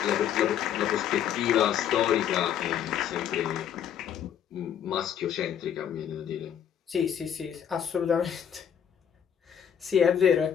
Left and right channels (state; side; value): quieter; right; 9.1 dB